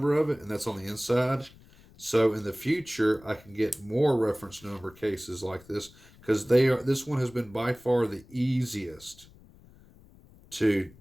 of it, and that's on the inside. So in the future, I can get more reference number cases like this, because this one has been by far the easiest to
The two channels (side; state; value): left; noise; rumble, 25 dB below the sound